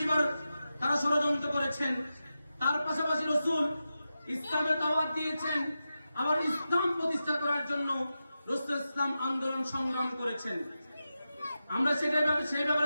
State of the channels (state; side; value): inverted; both; correlation -0.91